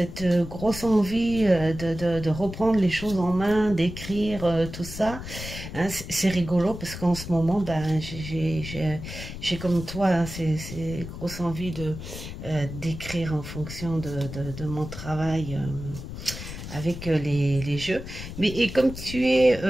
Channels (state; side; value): noise; left; rumble, 10 dB below the sound